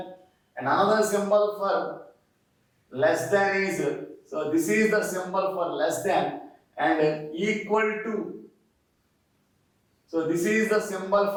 And another symbol for less than is So this is the symbol for less than and equal to. So this is the symbol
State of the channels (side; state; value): both; identical; correlation 1.00